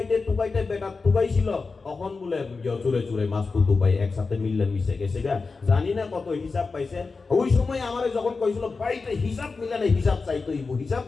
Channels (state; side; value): quieter; right; 4.3 dB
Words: বেটা টুকাইছিল তখন বলে চুরে চুরে মাছ তো টুকাই একসাথে মিললে মিশে গেছে গা, জানি না কত হিসাব পাইছে। ওই সময় আমারে যখন কইছিল বাড়িতে হিসাব মিলে না, হিসাব চাইতে